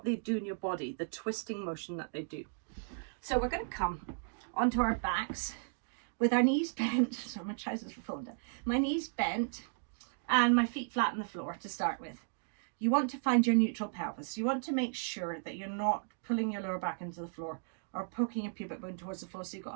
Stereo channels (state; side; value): silent; left; digital silence